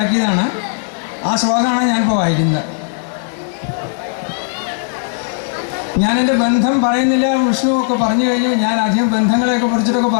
ആ ശ്ലോകമാണ് ഞാനിപ്പോൾ വായിക്കുന്നത്. ഞാൻ എൻ്റെ ബന്ധം പറയുന്നില്ല, വിഷ്ണു ഒക്കെ പറഞ്ഞു കഴിഞ്ഞു. ഞാൻ അധികം ബന്ധങ്ങളെയൊക്കെ കുറിച്ചിട്ടൊക്കെ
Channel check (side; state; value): right; silent; 60 dB below the other